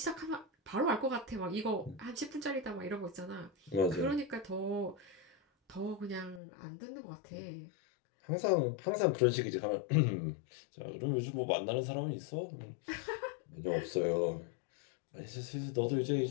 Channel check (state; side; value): drops out; right; at 6.4 s